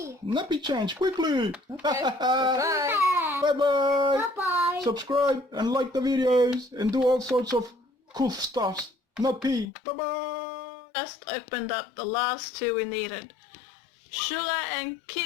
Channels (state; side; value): drops out; right; at 9.7 s